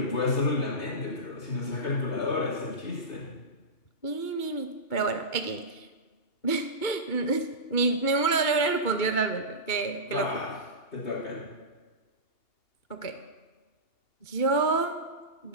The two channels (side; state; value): right; late; 2.3 ms